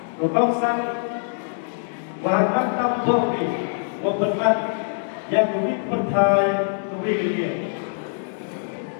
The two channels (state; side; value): silent; right; 63 dB below the other